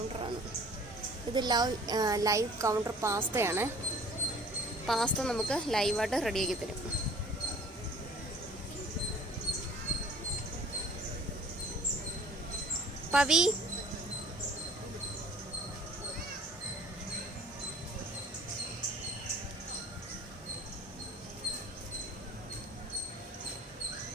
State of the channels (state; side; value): normal; both; correlation 0.50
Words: ഇത്. Live counter പാസ്തയാണ്. പാസ്ത നമുക്ക് ലൈവായിട്ട് റെഡിയാക്കി തരും. പവി,